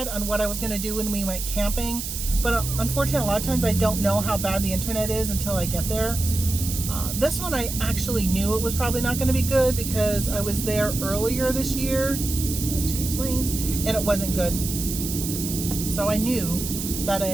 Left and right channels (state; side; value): noise; right; hiss, 6 dB below the sound